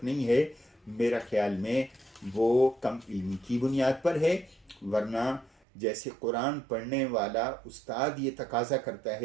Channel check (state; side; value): drops out; left; at 5.5 s